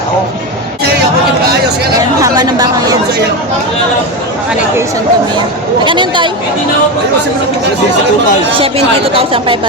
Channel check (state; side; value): normal; both; correlation 0.16